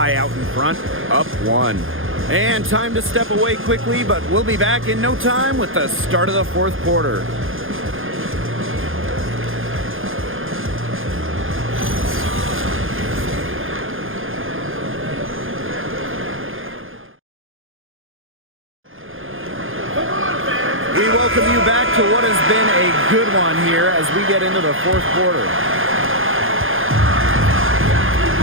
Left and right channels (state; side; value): late; left; 0.59 ms